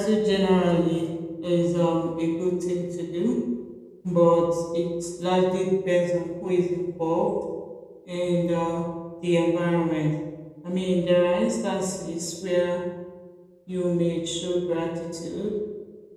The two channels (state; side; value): identical; both; correlation 1.00